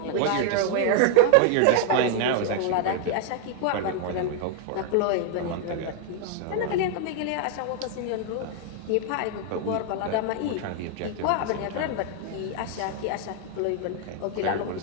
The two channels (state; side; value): different; both; correlation 0.00